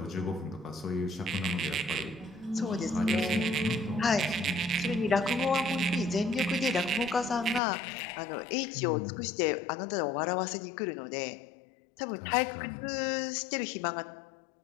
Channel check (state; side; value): drops out; right; at 7.6 s